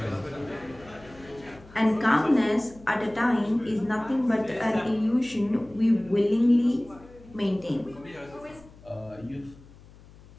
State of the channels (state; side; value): noise; left; hum, 22 dB below the sound